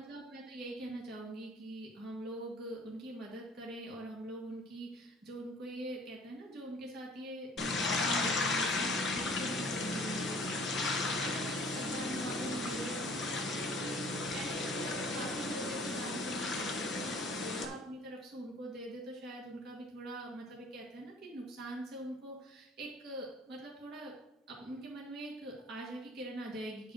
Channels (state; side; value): normal; both; correlation 0.52